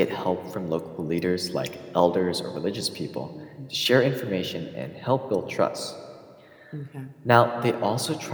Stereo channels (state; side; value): identical; both; correlation 1.00